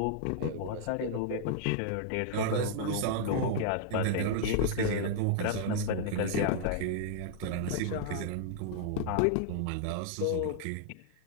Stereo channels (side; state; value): both; different; correlation -0.01